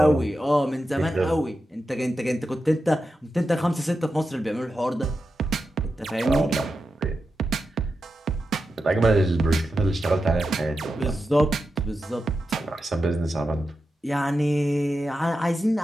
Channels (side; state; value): both; normal; correlation 0.90